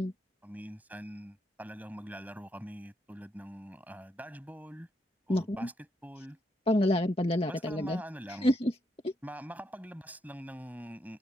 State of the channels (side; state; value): both; normal; correlation 0.79